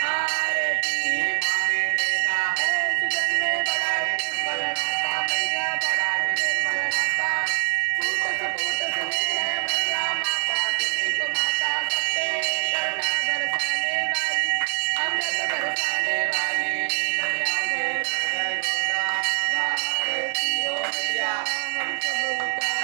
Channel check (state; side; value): silent; left; 62 dB below the other